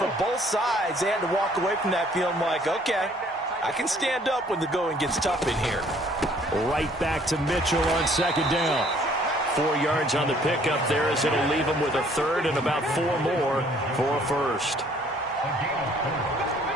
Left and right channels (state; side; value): normal; both; correlation 0.60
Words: both sides, they had to walk away from that feeling like, okay, I can stand up when the going gets tough in here. Right back to Mitchell on 2nd down. 4 yards on the pickup there as it'll leave him with a 3rd and about 4 more for a 1st.